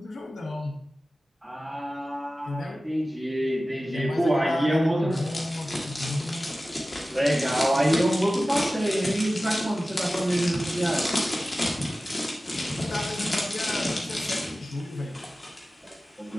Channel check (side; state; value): both; normal; correlation 0.96